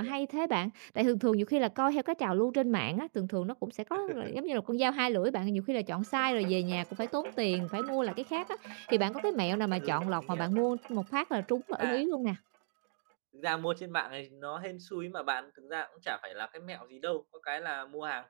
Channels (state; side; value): silent; left; digital silence